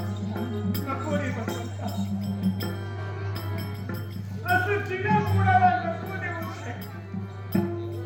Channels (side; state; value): both; identical; correlation 1.00